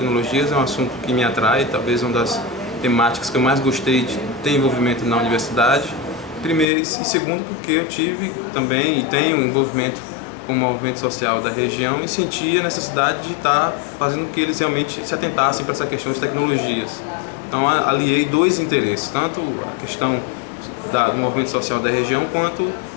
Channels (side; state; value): right; drops out; at 6.7 s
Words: é um assunto que me atrai, talvez uma das temáticas que eu mais gostei de ter envolvimento na universidade. Primeiro e segundo porque eu tive também e tenho envolvimento com o movimento social da região e sentia a necessidade de estar fazendo com que eles realmente se atentassem para essa questão de tecnologias. Então aliei dois interesses, tanto a questão do movimento social da região quanto